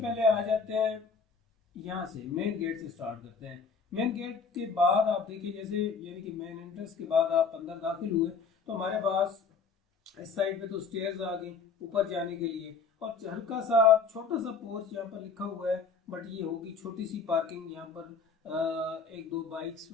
आ जाते हैं यहाँ से, मेन गेट से स्टार्ट करते हैं। मेन गेट के बाद आप देखिए, जैसे यानी कि मेन एंट्रेंस के बाद आप अंदर दाखिल हुए तो हमारे पास इस साइड पे तो स्टेयर्स आ गई ऊपर जाने के लिए। और हल्का सा छोटा सा पोर्च यहाँ पर लिखा हुआ है, बट ये होगी छोटी सी पार्किंग। यहाँ पर एक दो बाइक्स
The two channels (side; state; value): right; quieter; 5.2 dB